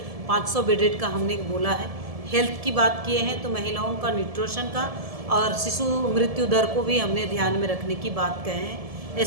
500 बेडेड का हमने बोला है। हेल्थ की बात किए हैं तो महिलाओं का न्यूट्रिशन का और शिशु मृत्यु दर को भी हमने ध्यान में रखने की बात कहे हैं।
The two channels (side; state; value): left; late; 1.7 ms